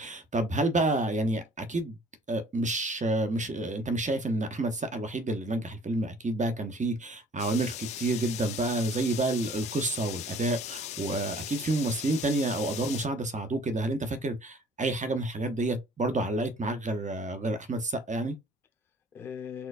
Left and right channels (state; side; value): normal; both; correlation 0.54